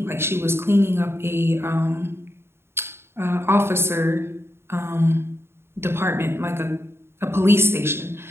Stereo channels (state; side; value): late; left; 0.12 ms